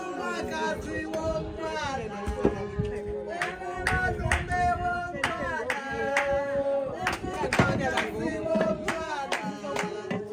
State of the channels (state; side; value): identical; both; correlation 1.00